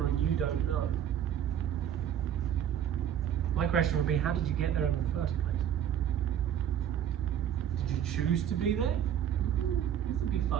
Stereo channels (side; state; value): left; quieter; 9.7 dB